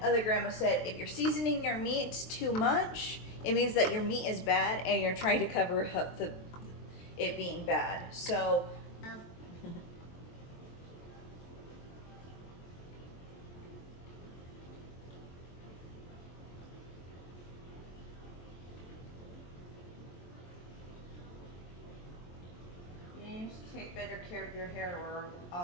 other grandma said if you're seasoning your meat too much, it means that your meat is bad and you're trying to cover up it being bad. So you need to take better care of your hair or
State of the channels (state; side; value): late; right; 23 ms